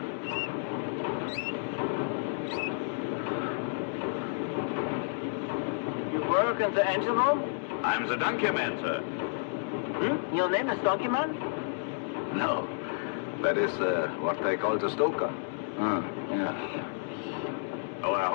You work in the engine room? I'm the donkey man, sir. Hmm? Your name is Donkey Man? No. That is what they call the stoker. Yeah. Oh, I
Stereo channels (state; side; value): silent; right; digital silence